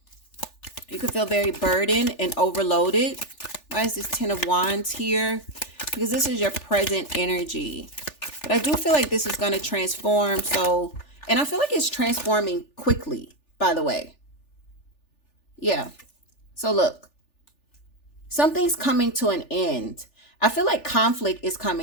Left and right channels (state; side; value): late; right; 3.4 ms